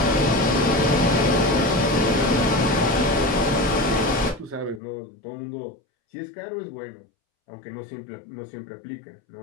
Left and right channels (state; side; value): drops out; right; at 4.8 s